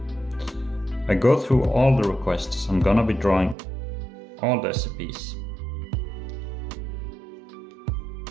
go through all the requests. I'm gonna be drawing all the SCPs,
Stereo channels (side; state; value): left; drops out; at 3.6 s